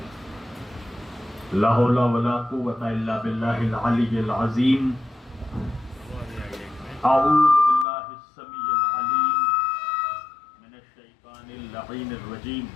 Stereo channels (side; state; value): right; drops out; at 7.9 s